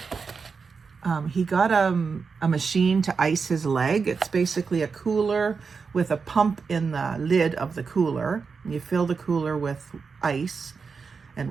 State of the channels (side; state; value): left; quieter; 5.2 dB